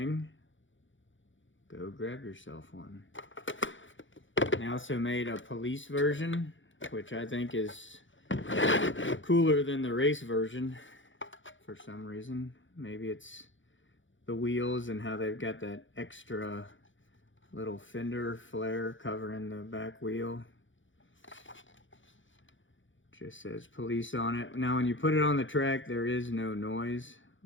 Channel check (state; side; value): late; right; 0.56 ms